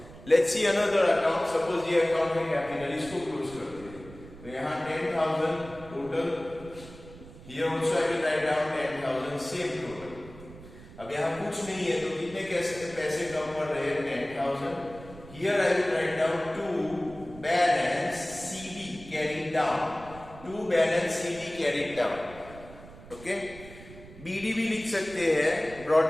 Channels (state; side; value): noise; right; rumble, 17 dB below the sound